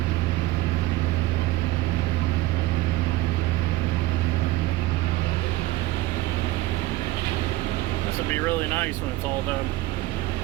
This will be really nice when it's all done.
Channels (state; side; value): quieter; left; 17.6 dB